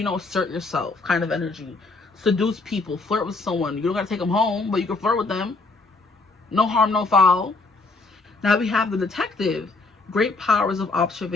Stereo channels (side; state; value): right; quieter; 3.6 dB